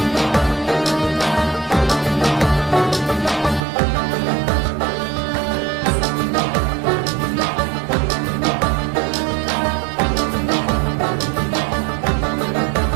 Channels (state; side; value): drops out; left; at 3.6 s